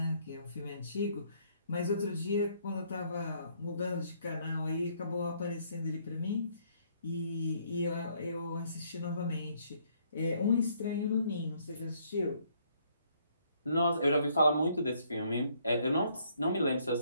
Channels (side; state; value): both; inverted; correlation -0.67